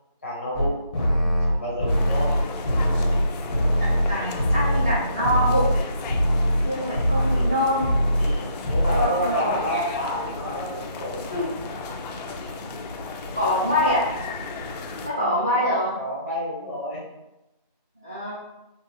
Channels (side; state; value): both; inverted; correlation -0.64